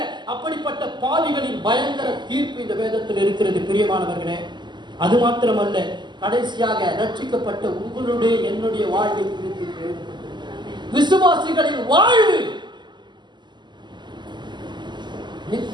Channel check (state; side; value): late; left; 0.21 ms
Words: அப்படிப்பட்ட பாவிகளின் பயங்கர தீர்ப்பு இந்த வேதத்தில் இருக்கிறது பிரியமானவர்களே. அது மாத்திரமல்ல, கடைசியாக ரட்சிக்கப்பட்ட உங்களுடைய என்னுடைய வாழ்வை குறித்து விசுவாசிகளின் வாழ்வு